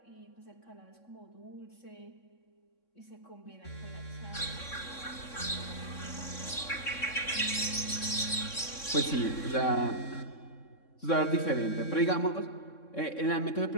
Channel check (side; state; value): right; late; 3.6 ms